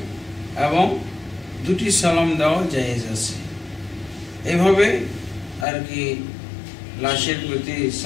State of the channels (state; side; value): drops out; right; at 5.7 s